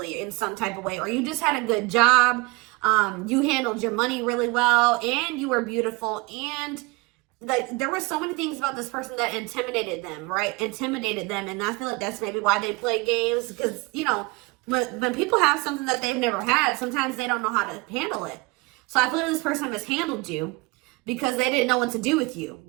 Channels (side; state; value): left; quieter; 25.5 dB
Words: in some type of way, or you just had a good job. You handled your money really well, and you were beautiful. And like, there were so many things about this person that intimidated them, right? Intimidated them. And I feel like that's maybe why they play games, because, you know, when people have something that they've never had, sometimes they don't know how to handle it. So I feel like this person mishandled you because they didn't know what to do with you.